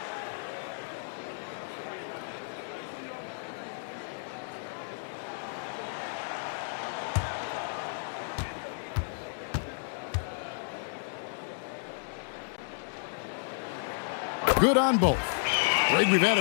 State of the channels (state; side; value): silent; right; digital silence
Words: Good on both. Greg, we've had